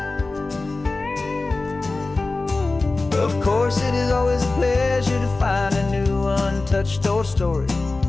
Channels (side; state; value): right; quieter; 3.4 dB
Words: Of course, it is always a pleasure to find a new untouched old story.